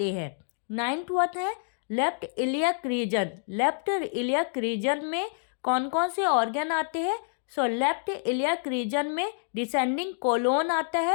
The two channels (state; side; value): silent; right; digital silence